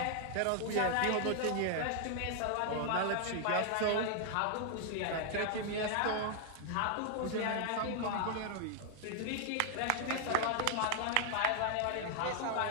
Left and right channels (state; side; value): different; both; correlation 0.00